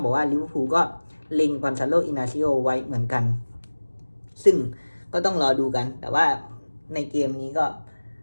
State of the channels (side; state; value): both; inverted; correlation -1.00